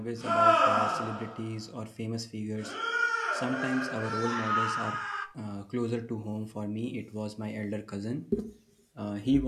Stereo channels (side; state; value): both; identical; correlation 1.00